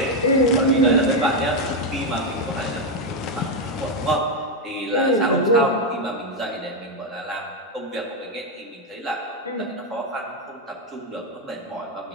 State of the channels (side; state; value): both; normal; correlation 0.05